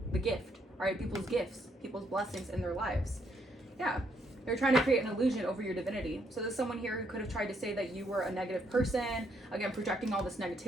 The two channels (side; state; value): both; normal; correlation 0.73